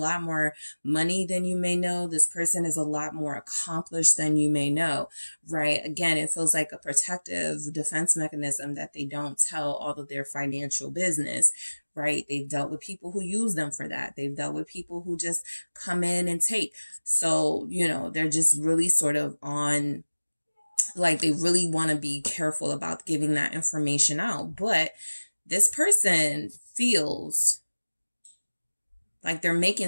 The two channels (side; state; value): both; inverted; correlation -1.00